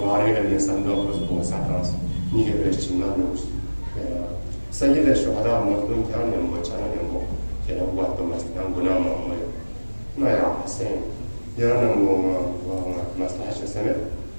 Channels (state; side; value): inverted; both; correlation -1.00